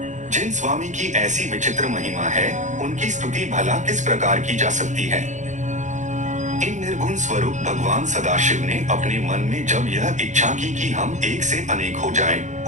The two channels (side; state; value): left; late; 0.35 ms